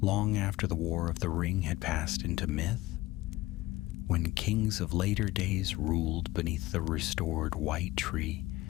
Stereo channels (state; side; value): quieter; right; 18.4 dB